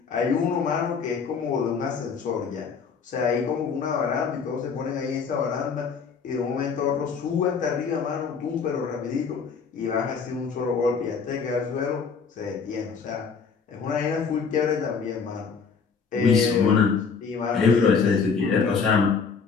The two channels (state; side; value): quieter; right; 5.6 dB